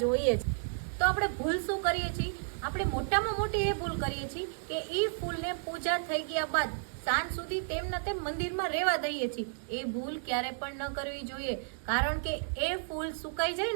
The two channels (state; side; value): silent; left; digital silence